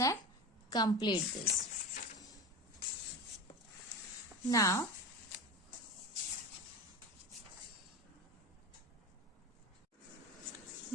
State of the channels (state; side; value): normal; both; correlation 0.28